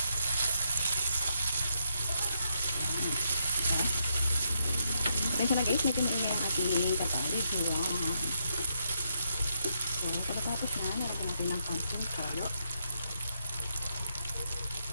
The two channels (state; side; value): inverted; both; correlation -0.78